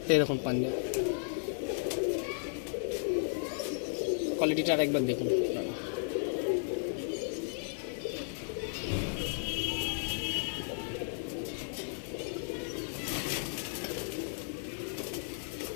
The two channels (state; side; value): silent; right; 55 dB below the other